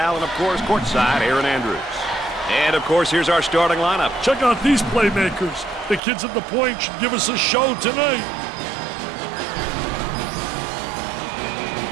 and of course, courtside, Aaron Andrews. And of course, here's our starting lineup. Check out these playmakers. The kids at the point should give us a show tonight.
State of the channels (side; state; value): left; drops out; at 6.0 s